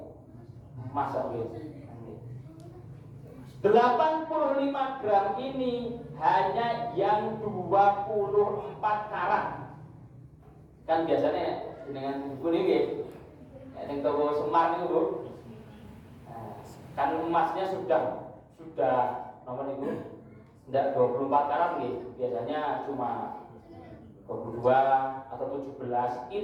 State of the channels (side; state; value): both; identical; correlation 1.00